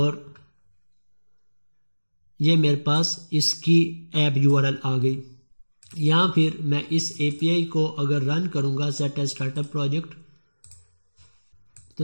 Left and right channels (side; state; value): both; inverted; correlation -1.00